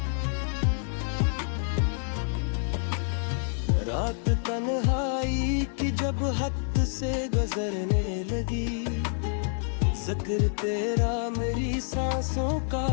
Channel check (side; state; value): right; silent; digital silence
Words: रात तन्हाई की जब हद से गुजरने लगी, जिक्र तेरा मेरी सांसों का